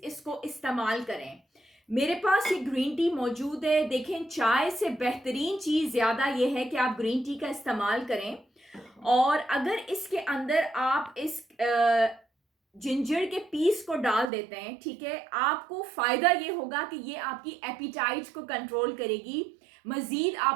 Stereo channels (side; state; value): left; drops out; at 14.2 s